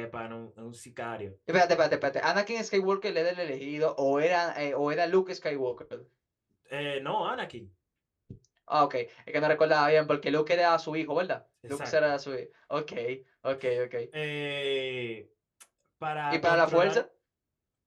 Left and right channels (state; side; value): identical; both; correlation 1.00